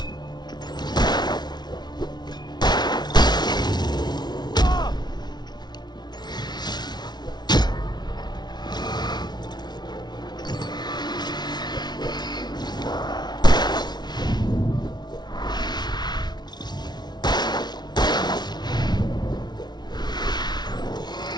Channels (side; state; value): right; late; 0.20 ms